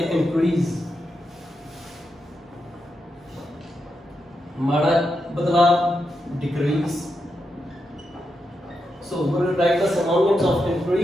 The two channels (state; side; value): normal; both; correlation 0.85